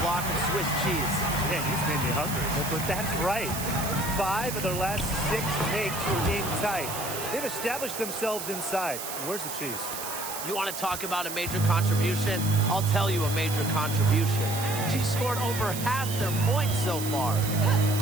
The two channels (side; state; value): right; noise; hiss, 7 dB below the sound